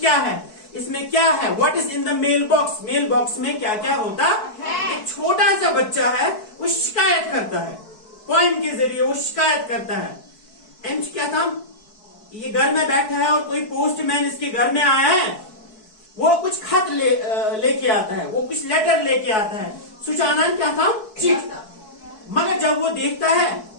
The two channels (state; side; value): late; right; 4.6 ms